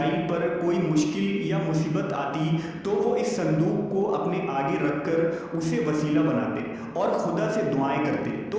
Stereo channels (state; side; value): identical; both; correlation 1.00